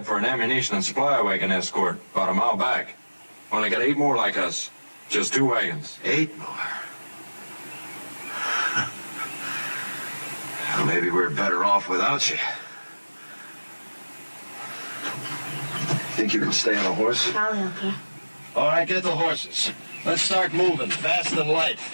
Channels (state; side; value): inverted; both; correlation -1.00